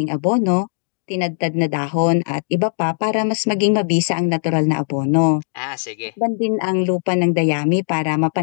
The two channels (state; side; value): silent; right; digital silence